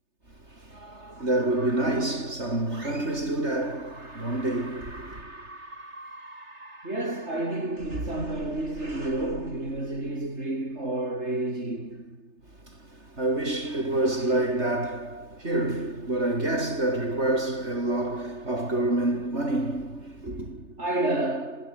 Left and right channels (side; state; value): left; late; 3.3 ms